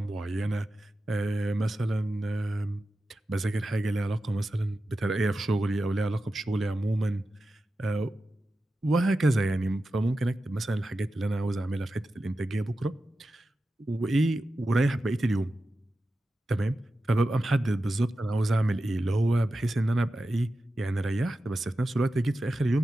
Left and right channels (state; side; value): normal; both; correlation 0.92